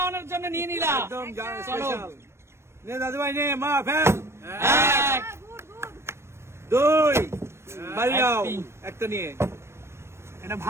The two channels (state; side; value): late; left; 0.13 ms